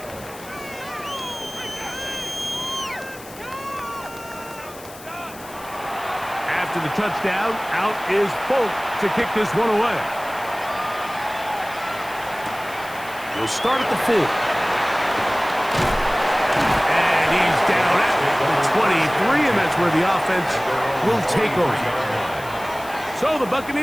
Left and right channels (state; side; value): noise; left; hiss, 18 dB below the sound